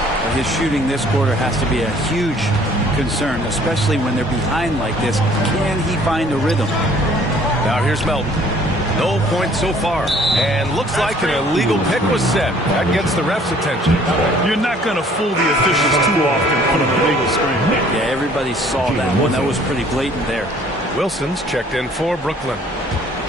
His shooting this quarter has to be a huge concern, especially when they're behind like this. Can he find a rhythm? Now here's Melton. No points so far. And looks like an illegal pick was set. That gets the ref's attention. You're not going to fool the officials too often on an illegal screen. Yeah, everybody saw that one. That was pretty blatant there. Wilson's checked in for Brooklyn.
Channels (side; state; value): both; normal; correlation 0.57